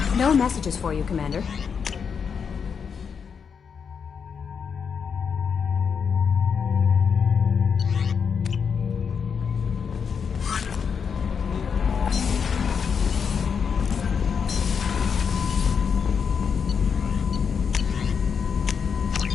No messages for you, Commander.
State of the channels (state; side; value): quieter; right; 6.5 dB